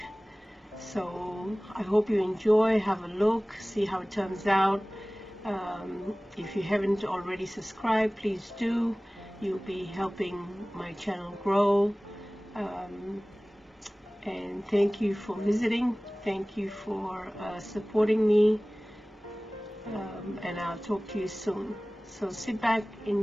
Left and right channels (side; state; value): both; normal; correlation 0.98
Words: So I hope you enjoy, have a look, see how it turns out. If you haven't already subscribed, please do. You'll be helping my channel grow. And thank you for visiting. Thank you for supporting me. And I'll talk to you soon. So sit back,